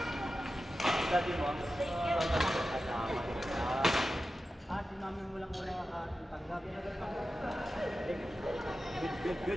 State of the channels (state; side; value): normal; both; correlation 0.93